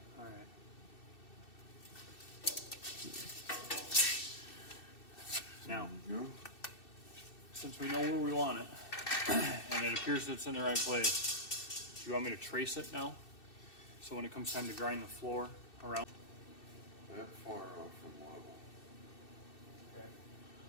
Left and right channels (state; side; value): late; right; 2.6 ms